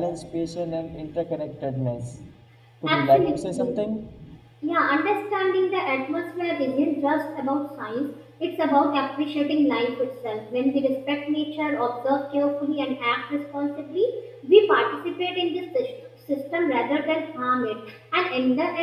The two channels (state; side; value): identical; both; correlation 1.00